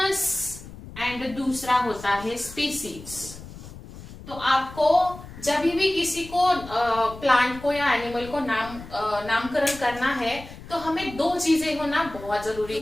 एंड दूसरा होता है स्पीसीज। तो आपको जब भी किसी को प्लांट को या एनिमल को नामकरण करना है तो हमें दो चीजें होना बहुत जरूरी।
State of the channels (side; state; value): left; noise; rumble, 15 dB below the sound